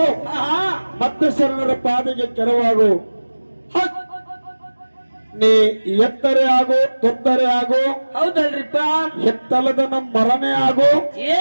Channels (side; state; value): both; inverted; correlation -1.00